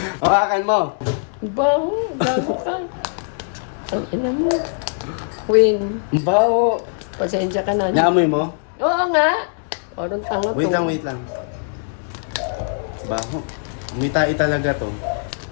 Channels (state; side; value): silent; right; digital silence